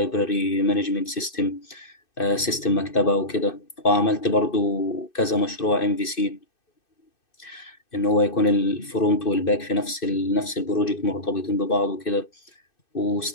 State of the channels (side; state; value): right; late; 2.6 ms